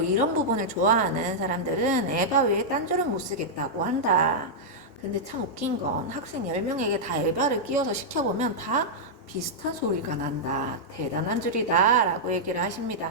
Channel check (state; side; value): normal; both; correlation -0.08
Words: 이런 부분을 좋아하는 사람들은 에바 외에 딴 줄은 못 쓰겠다고 한다. 근데 참 웃긴 건 학생 10명에게 다 에바를 끼워서 시켜보면 다 비슷한 소리가 난다. 대단한 줄이다 라고 얘기를